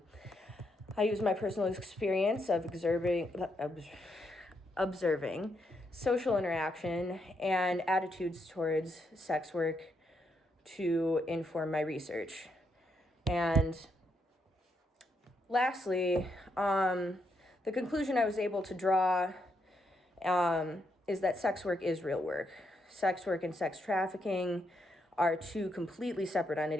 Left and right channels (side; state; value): both; normal; correlation 0.79